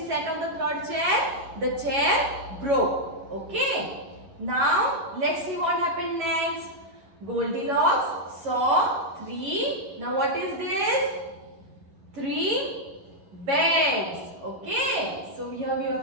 sat on the third chair, the chair broke. Okay, now let's see what happened next. Goldilocks saw three. Now what is this? Three beds. Okay, so here we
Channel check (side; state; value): left; late; 11 ms